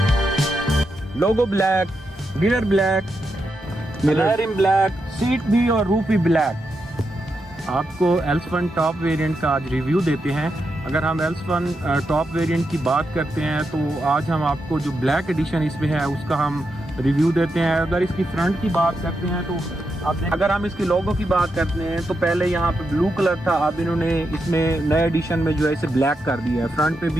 Logo black, mirror black, mirror black, seat भी और रूफ भी ब्लैक। आपको L1 टॉप वेरिएंट का आज रिव्यू देते हैं। अगर हम L1 टॉप वेरिएंट की बात करते हैं तो आज हम आपको जो ब्लैक एडिशन इसमें है उसका हम रिव्यू देते हैं। अगर इसकी फ्रंट की बात करते हैं तो अगर हम इसकी लोगो की बात करते हैं तो पहले यहाँ पे ब्लू कलर था, अब इन्होंने इसमें नए एडिशन में जो है इसे ब्लैक कर दिया है, फ्रंट पे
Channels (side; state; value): both; normal; correlation 0.85